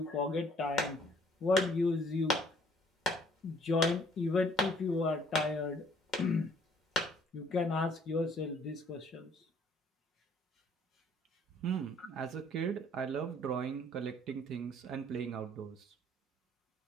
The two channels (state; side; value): normal; both; correlation 0.61